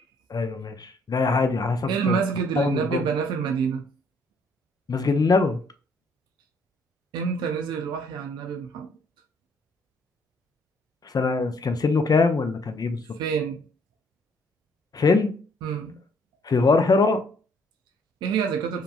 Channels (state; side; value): normal; both; correlation 0.65